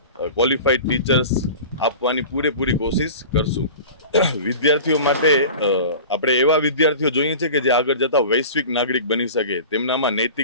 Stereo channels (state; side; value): inverted; both; correlation -0.37